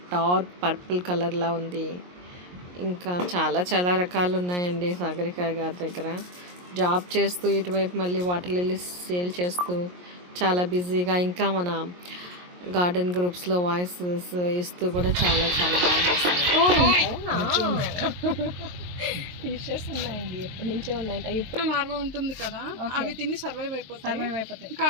డార్క్ పర్పుల్ కలర్లా ఉంది. ఇంకా చాలా చాలా రకాలు ఉన్నాయండి సాగరిక గారి దగ్గర. జాబ్ చేస్తూ ఇటువైపు మళ్ళీ వాటర్ లిల్లీస్ సేల్ చేస్తూ చాలా బిజీగా, ఇంకా మన గార్డెన్ గ్రూప్స్లో వాయిసెస్ ఇస్తూ కూడా చాలా చాలా బాగా చేస్తుంది. ఫిషెస్ ఉన్నాయండి, ఎప్పటి నుంచో ఉన్నాయి. ఇప్పుడు లార్వా ఉంటుంది కదా, అవి తిని సర్వైవ్ అయిపోతాయి.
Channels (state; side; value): late; left; 22 ms